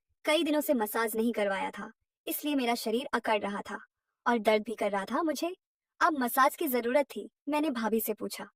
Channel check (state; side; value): identical; both; correlation 1.00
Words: कई दिनों से मसाज नहीं करवाया था, इसलिए मेरा शरीर अकड़ रहा था और दर्द भी कर रहा था मुझे। अब मसाज की जरूरत थी। मैंने भाभी से पूछा,